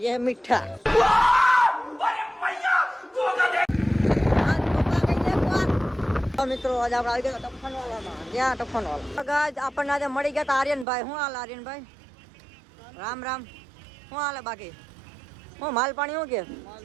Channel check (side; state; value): left; drops out; at 10.9 s